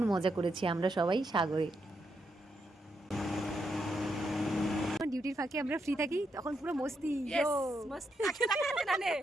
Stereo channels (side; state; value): both; normal; correlation 0.81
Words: মজা করেছি আমরা সবাই সাগরে। ডিউটির ফাঁকে আমরা ফ্রি থাকি, তখন পুরো মস্তি। मस्ती ना ने